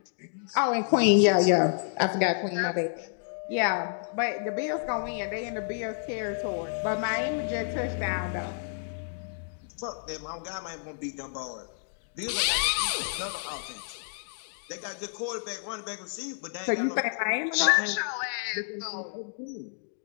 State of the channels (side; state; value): right; silent; digital silence